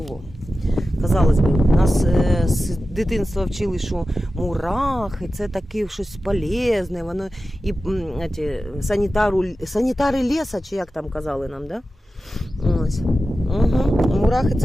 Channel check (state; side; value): normal; both; correlation 0.94